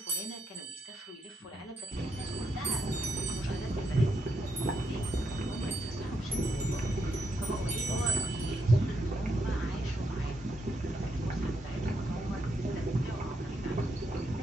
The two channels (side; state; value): both; normal; correlation 0.80